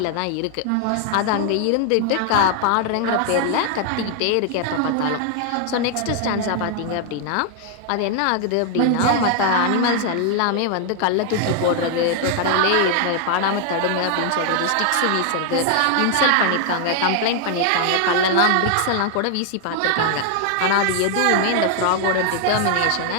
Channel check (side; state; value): both; different; correlation 0.00